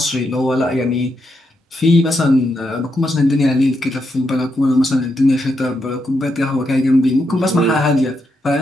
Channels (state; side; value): normal; both; correlation 0.82